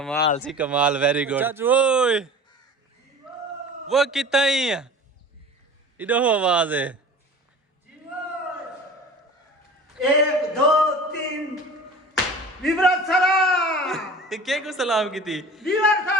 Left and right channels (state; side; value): normal; both; correlation 0.39